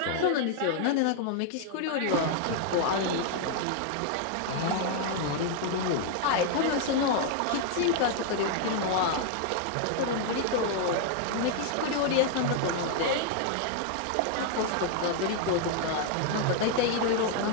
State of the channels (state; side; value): different; both; correlation 0.00